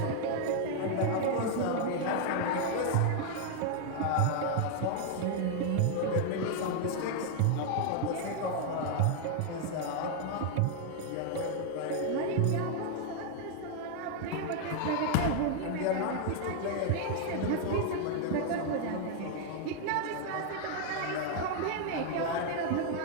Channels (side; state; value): both; different; correlation 0.00